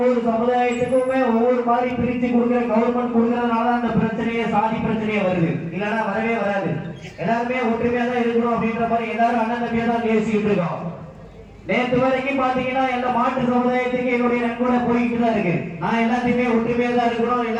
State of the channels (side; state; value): both; identical; correlation 1.00